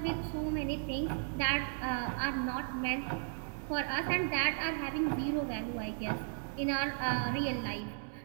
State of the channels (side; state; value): left; silent; digital silence